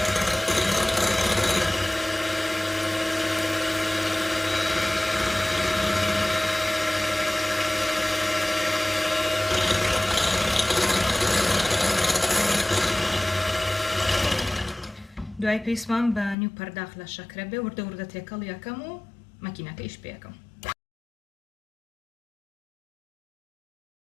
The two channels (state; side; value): drops out; right; at 16.4 s